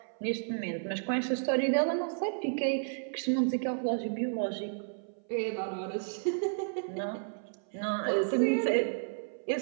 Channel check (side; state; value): left; silent; 56 dB below the other